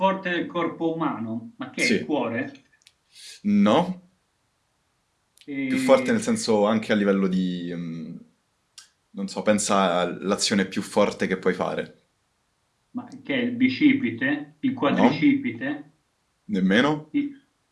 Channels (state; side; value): identical; both; correlation 1.00